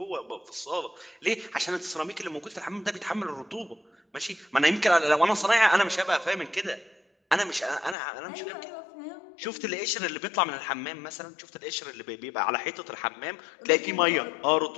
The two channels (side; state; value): right; drops out; at 8.0 s